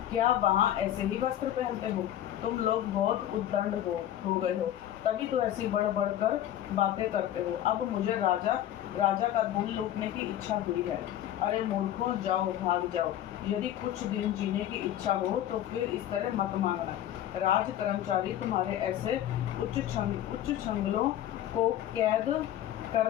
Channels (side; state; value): right; quieter; 12.0 dB